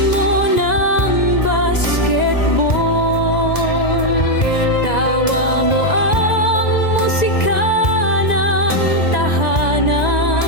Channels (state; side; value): late; right; 1.9 ms